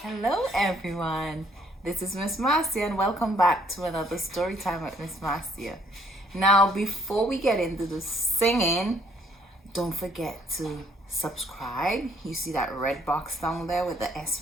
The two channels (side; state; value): both; normal; correlation 0.64